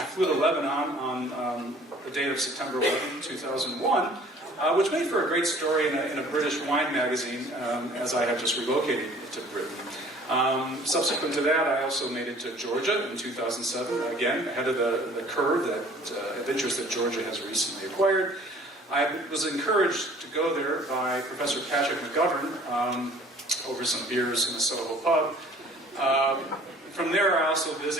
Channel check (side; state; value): both; normal; correlation 0.52